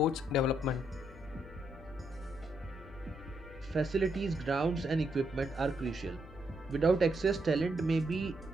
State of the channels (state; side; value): noise; left; hum, 19 dB below the sound